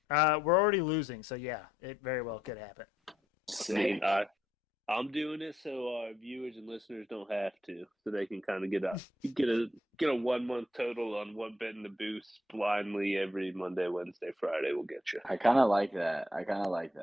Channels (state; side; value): normal; both; correlation 0.75